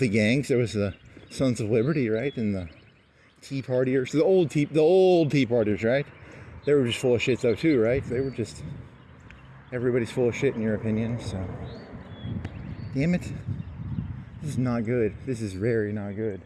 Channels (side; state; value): both; identical; correlation 1.00